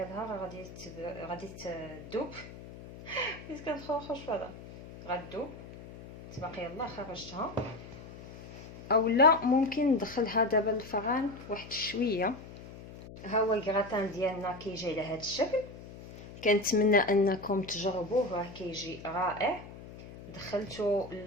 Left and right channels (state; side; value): noise; left; hum, 15 dB below the sound